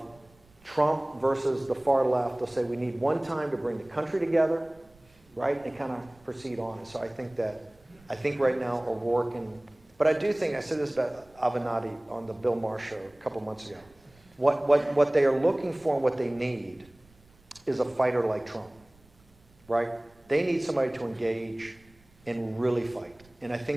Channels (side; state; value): right; noise; rumble, 29 dB below the sound